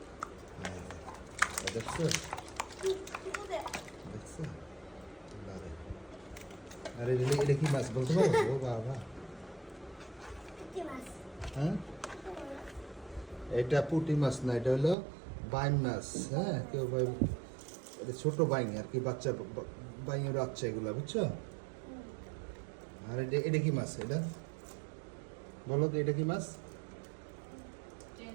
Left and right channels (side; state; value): left; drops out; at 15.0 s